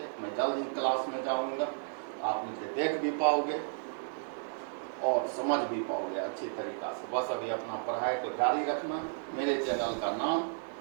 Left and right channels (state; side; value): silent; left; digital silence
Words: मैं जल्द ही क्लास में जाऊंगा, आप मुझे देख भी पाओगे और समझ भी पाओगे अच्छी तरीका से। बस अभी अपना पढ़ाई को जारी रखना। मेरे चैनल का नाम